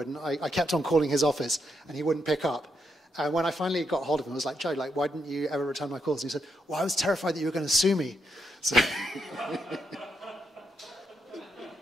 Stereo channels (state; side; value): normal; both; correlation 0.81